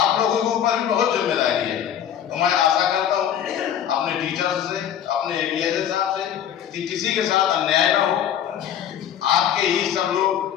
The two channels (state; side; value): quieter; right; 9.7 dB